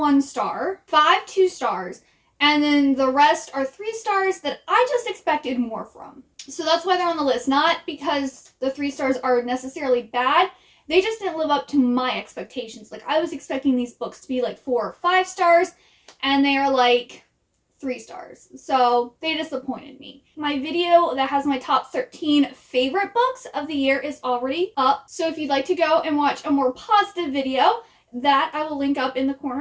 star, 5 2 stars, and then the rest are 3 stars that I just expected more from. So that's why they're on the list. Not because the 3 stars are necessarily bad. They just didn't live up to my expectations. Like, I was expecting these books to be like 4 or 5 stars, and they are like 3 stars. So they disappointed me. My video that has my top 13 favorite books of the year is already up. So if you'd like to go and watch a more positive video, that I will link up in the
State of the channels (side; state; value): both; identical; correlation 1.00